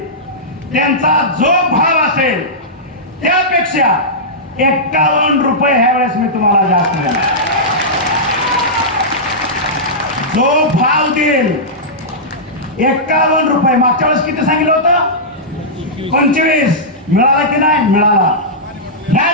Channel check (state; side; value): normal; both; correlation -0.13